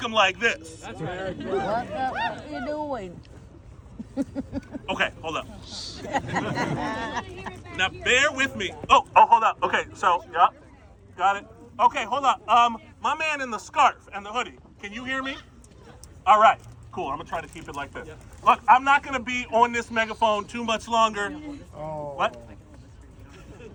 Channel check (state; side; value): identical; both; correlation 1.00